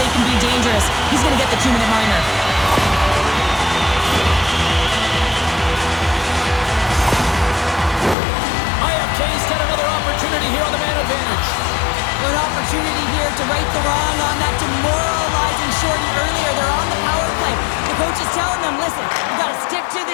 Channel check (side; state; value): right; drops out; at 8.2 s